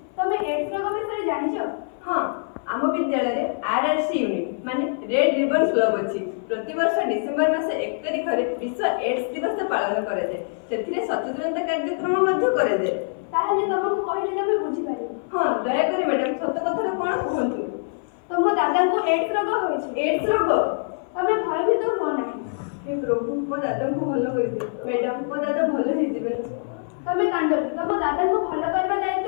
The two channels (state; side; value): silent; right; 59 dB below the other